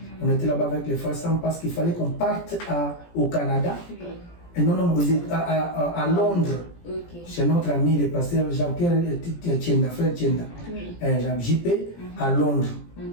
On était là-bas avec les frères Sam parce qu'il fallait qu'on parte au Canada. Et non, à Londres. Chez notre ami le pasteur Jean-Pierre Tienda, frère Tienda, JP, à Londres.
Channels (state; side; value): late; right; 17 ms